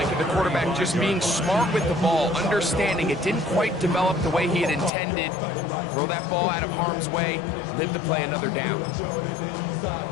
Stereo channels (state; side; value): drops out; right; at 4.9 s